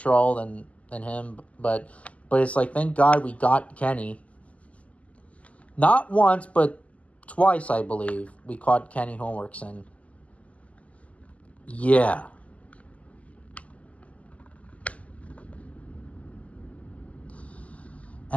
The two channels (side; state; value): right; late; 0.068 ms